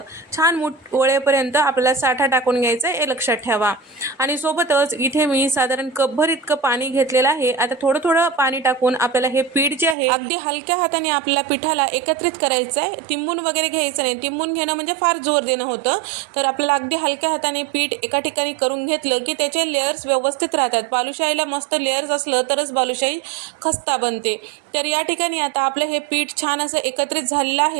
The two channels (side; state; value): left; drops out; at 10.0 s